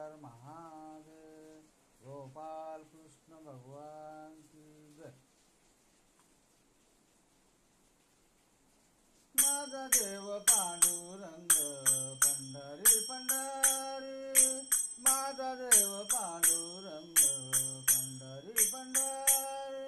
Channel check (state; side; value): identical; both; correlation 1.00